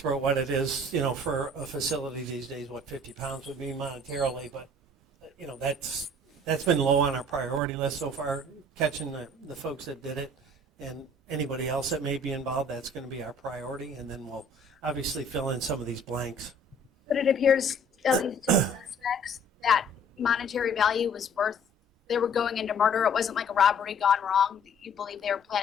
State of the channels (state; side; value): normal; both; correlation 0.54